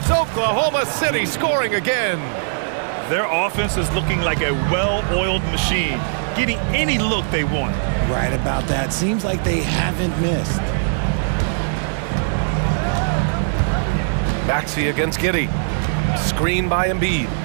Oklahoma City scoring again. Their offense is looking like a well-oiled machine, getting any look they want. Right about that. Seems like they haven't missed. Maxey against Giddey. Screen by Embiid.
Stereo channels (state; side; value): silent; left; 66 dB below the other